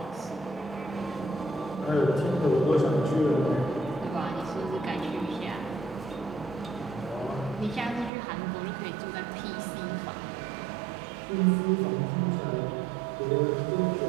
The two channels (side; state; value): left; drops out; at 8.1 s